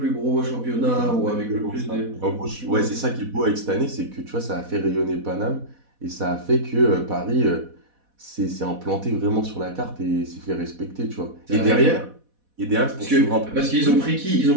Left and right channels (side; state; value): left; late; 4.1 ms